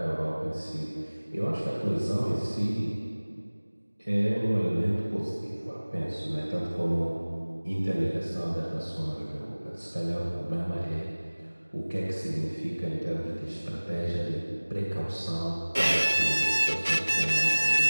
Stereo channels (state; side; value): inverted; both; correlation -1.00